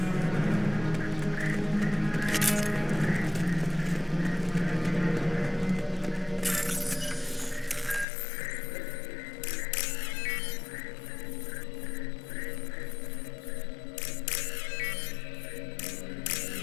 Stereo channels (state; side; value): drops out; right; at 8.1 s